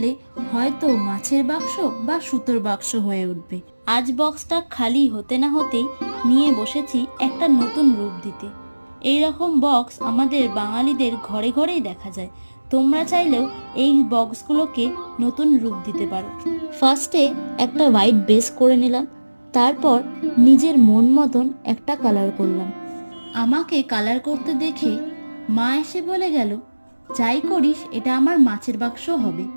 হয়তো মাছের বাক্স বা সুতোর বাক্স হয়ে উঠবে। আজ বক্সটা খালি হতে না হতেই নিয়ে বসেছি একটা নতুন রূপ দিতে। এই রকম বক্স আমাদের বাঙালিদের ঘরে ঘরেই দেখা যায়। তোমরা চাইলেও এই বক্সগুলোকে নতুন রূপ দিতে পারো। ফার্স্টে একটা হোয়াইট বেস করে নিলাম, তারপর নিজের মন মতন একটা কালার করলাম। আমাকে কালার করতে দেখে মা এসে বলে গেল, যাই করিস এটা আমার মাছের বাক্স হবে।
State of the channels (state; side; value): inverted; both; correlation -1.00